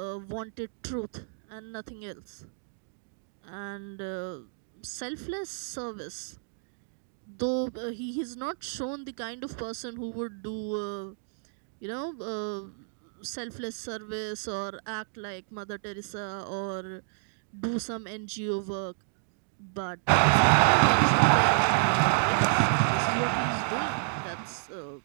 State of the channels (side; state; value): left; silent; digital silence